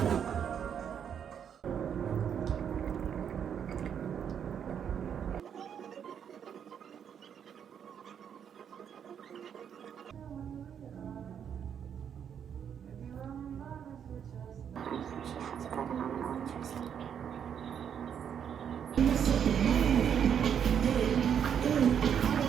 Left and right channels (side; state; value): left; quieter; 8.2 dB